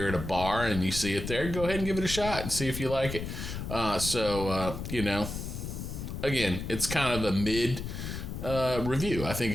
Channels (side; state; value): left; noise; rumble, 6 dB below the sound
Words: at a bar and you see it there, go ahead and give it a shot and see if you like it. Again, it's kind of a mid review. I think